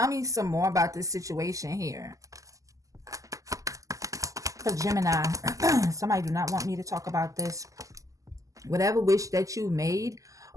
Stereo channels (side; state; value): left; late; 0.16 ms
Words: me some more about this situation here. For Gemini, somebody do not want me to talk about this. Whatever wish that you made